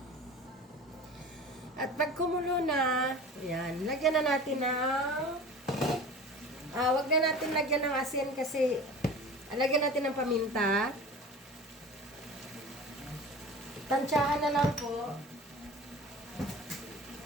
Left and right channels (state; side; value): normal; both; correlation 0.38